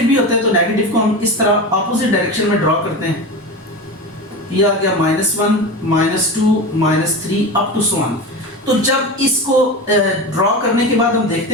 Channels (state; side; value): normal; both; correlation 0.25